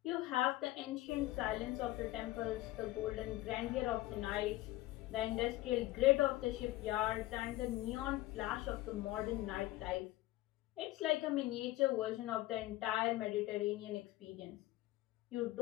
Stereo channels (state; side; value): quieter; right; 17.5 dB